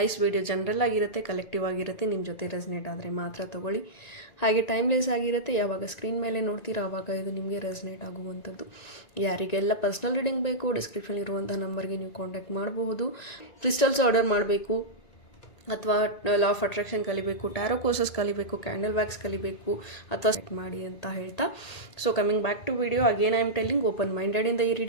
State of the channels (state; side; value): late; right; 1.9 ms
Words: ವಿಡಿಯೋ ಜನರಲ್ ಆಗಿರುತ್ತೆ, ಕಲೆಕ್ಟಿವ್ ಆಗಿರುತ್ತೆ, ನಿಮ್ಮ ಜೊತೆ ರೆಸನೇಟ್ ಆದರೆ ಮಾತ್ರ ತೊಗೊಳ್ಳಿ. ಹಾಗೆ ಟೈಮ್ಲೆಸ್ ಆಗಿರುತ್ತೆ, ಯಾವಾಗ ಸ್ಕ್ರೀನ್ ಮೇಲೆ ನೋಡ್ತೀರಾ ಆವಾಗ ಇದು ನಿಮಗೆ ರೆಸನೇಟ್ ಆಗುವಂಥದ್ದು. ಯಾರಿಗೆಲ್ಲ ಪರ್ಸ್ನಲ್ ರೀಡಿಂಗ್ ಬೇಕು, ಡಿಸ್ಕ್ರಿಪ್ಷನ್ ಇರುವಂಥ ನಂಬರ್ಗೆ ನೀವು ಕಾಂಟ್ಯಾಕ್ಟ್ ಮಾಡಬಹುದು. ಕ್ರಿಸ್ಟಲ್ಸ್ ಆರ್ಡರ್ ಮಾಡಬೇಕು ಅಥವಾ ಲಾ ಆಫ್ ಅಟ್ರಾಕ್ಷನ್ ಕಲಿಬೇಕು, ಟ್ಯಾರೋ ಕೋರ್ಸಸ್ ಕಲಿಬೇಕು, ಕ್ಯಾಂಡಲ್ ವ್ಯಾಕ್ಸ್ ಕಲಿಬೇಕು ಅಥವಾ ಸೆಟ್ ಮಾಡಿ ಅಂತ ಹೇಳ್ತಾ, so coming back to video, again I am telling, open ಮೈಂಡೆಡಿಂದ ಈ